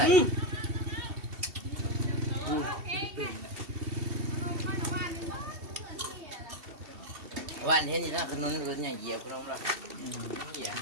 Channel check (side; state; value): left; late; 2.7 ms